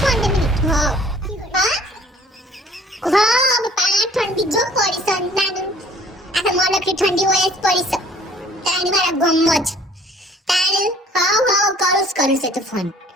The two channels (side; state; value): both; normal; correlation 0.55